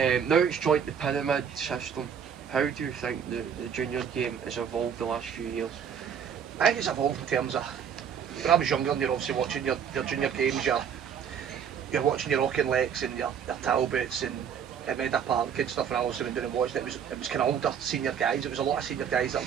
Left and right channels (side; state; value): left; quieter; 7.7 dB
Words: Now it's joined the pyramid system. How do you think the junior game has evolved the last few years? I think it's evolved in terms of, when I was younger and you're obviously watching your junior games, you're watching your Auchinlecks and your Talbots and Meda Park and stuff, and I also went down and watched it. It was kind of older senior guys. It was a lot of senior guys that